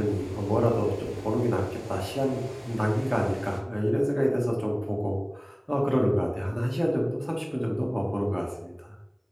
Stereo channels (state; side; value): identical; both; correlation 1.00